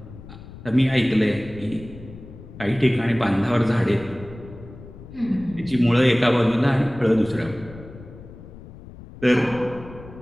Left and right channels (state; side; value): noise; left; rumble, 16 dB below the sound